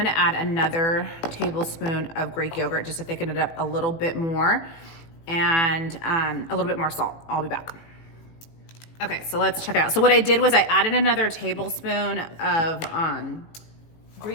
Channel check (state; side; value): late; right; 18 ms